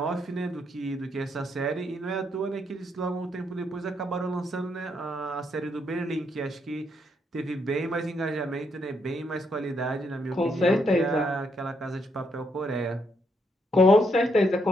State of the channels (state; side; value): normal; both; correlation 0.76